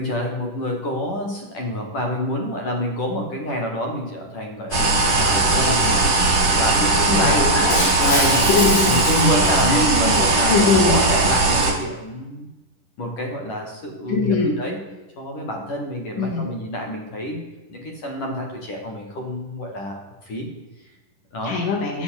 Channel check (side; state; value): right; late; 10 ms